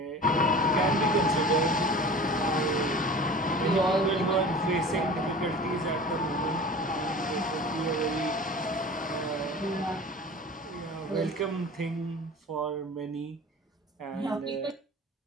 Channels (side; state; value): both; normal; correlation 0.39